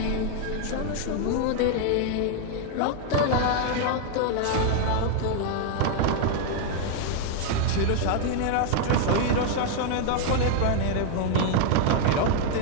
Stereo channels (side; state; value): both; different; correlation 0.00